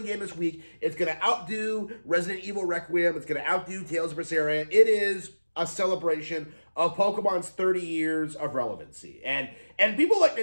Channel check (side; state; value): both; inverted; correlation -1.00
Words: game this week. It's going to outdo Resident Evil Requiem. It's going to outdo Tales of Berseria. It is a celebration of Pokemon's 30 years of relevancy. And people like